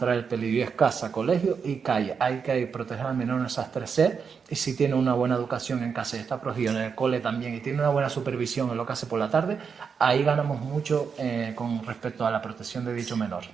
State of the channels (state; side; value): quieter; left; 6.1 dB